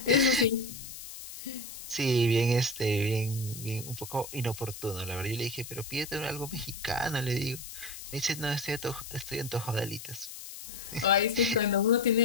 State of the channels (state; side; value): noise; left; hiss, 12 dB below the sound